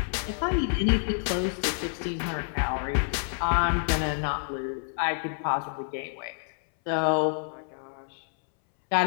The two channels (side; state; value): right; silent; 59 dB below the other